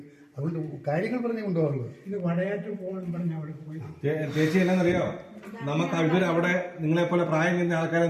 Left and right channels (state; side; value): identical; both; correlation 1.00